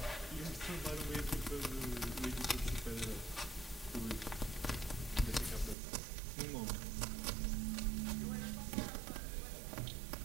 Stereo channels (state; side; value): drops out; left; at 5.8 s